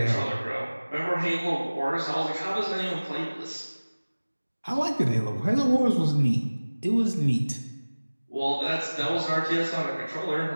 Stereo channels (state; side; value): inverted; both; correlation -1.00